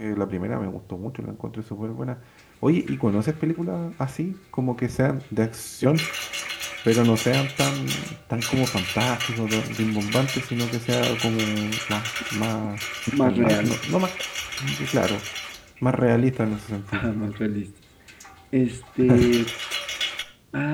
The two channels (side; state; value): both; identical; correlation 1.00